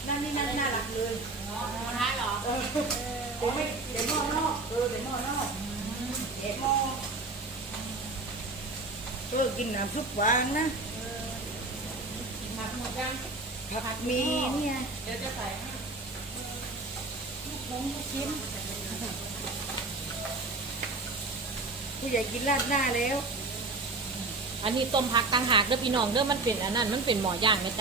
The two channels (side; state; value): left; quieter; 3.3 dB